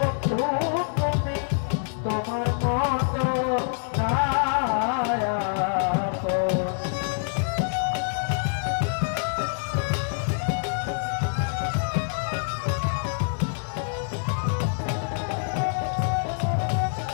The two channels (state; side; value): silent; right; digital silence